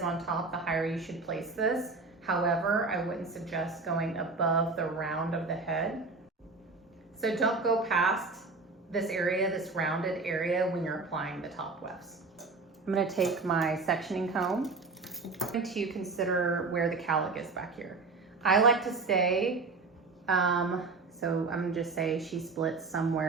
on top, the higher you should place this. However, I wouldn't suggest going above the round of the head. So don't go past this area, this rounded area, when you're applying the top wefts. I'm going to take my sectioning comb. I'm going to consider where the cowlick is back here. I like to stay, so I'm going to just say she splits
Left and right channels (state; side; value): quieter; left; 3.9 dB